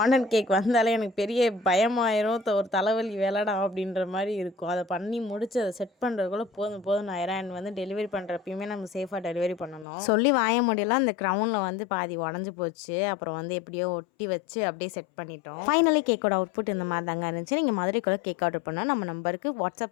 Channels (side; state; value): right; drops out; at 9.9 s